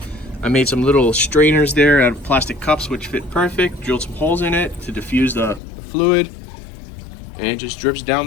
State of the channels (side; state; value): right; drops out; at 5.6 s